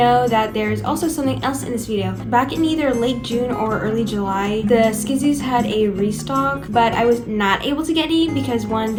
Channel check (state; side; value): identical; both; correlation 1.00